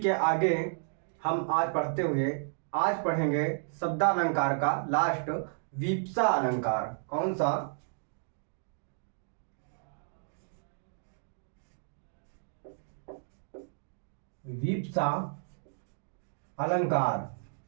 आगे हम आज पढ़ेंगे शब्दालंकार का लास्ट विप्सा अलंकार। कौन सा? विप्सा अलंकार।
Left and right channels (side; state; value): left; silent; digital silence